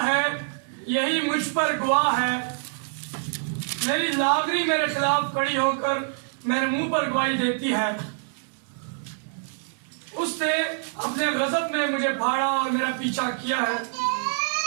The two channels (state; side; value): silent; left; 61 dB below the other